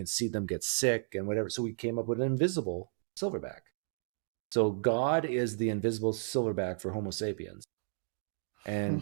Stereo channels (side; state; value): left; silent; digital silence